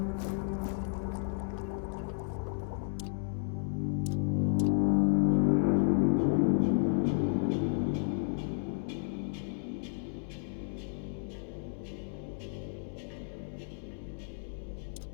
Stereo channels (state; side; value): silent; right; digital silence